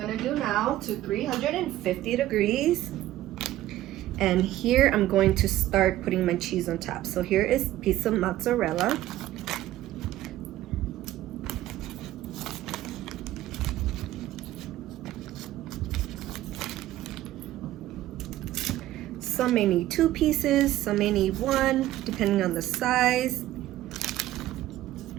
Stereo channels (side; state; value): left; quieter; 14.6 dB